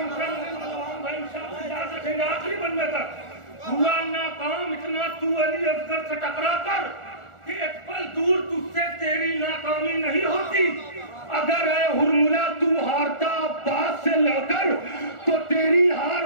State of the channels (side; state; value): right; late; 1.4 ms